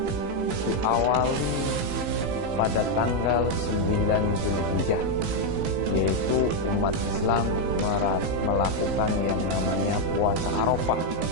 diawali pada tanggal 9 Zulhijjah, yaitu umat Islam melakukan yang namanya puasa Arafah.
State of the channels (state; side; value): late; left; 18 ms